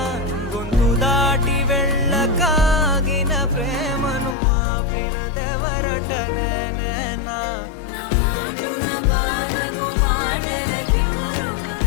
గొంతు దాటి వెళ్ళకాగిన ప్రేమను ఆపినదెవరట నేనా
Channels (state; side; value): drops out; right; at 4.4 s